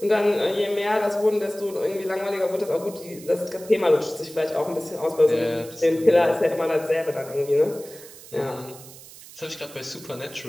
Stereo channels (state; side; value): noise; right; hiss, 18 dB below the sound